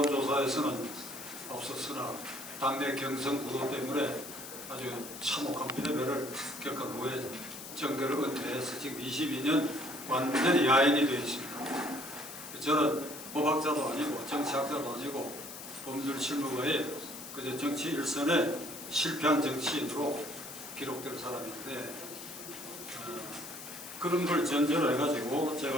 앞섰으나 당내 경선 구도 때문에 아주 참혹한 패배를 겪은 후에 정계를 은퇴해서 지금 22년 완전히 야인이 되어 있습니다. 저는 법학자도 아니고 정치학자도 아니고 법률 실무가의 그저 정치 일선에 실패한 정치인으로 기록될 사람인데 그런 걸 전제로 해가지고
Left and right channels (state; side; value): noise; left; hiss, 11 dB below the sound